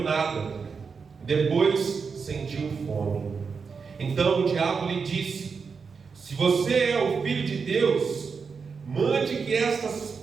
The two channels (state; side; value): quieter; left; 5.4 dB